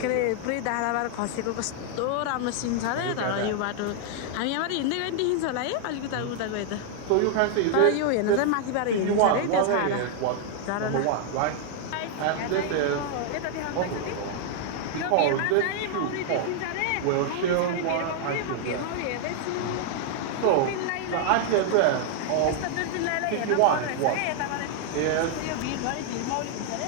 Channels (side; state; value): both; different; correlation 0.00